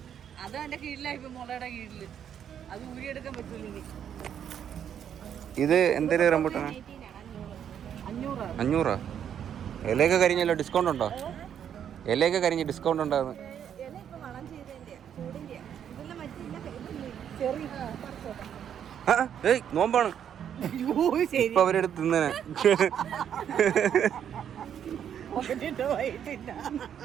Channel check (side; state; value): left; quieter; 9.0 dB